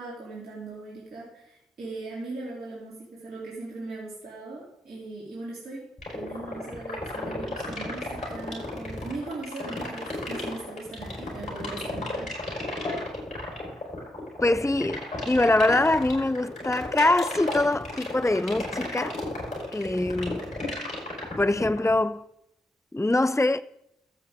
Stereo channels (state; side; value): normal; both; correlation 0.83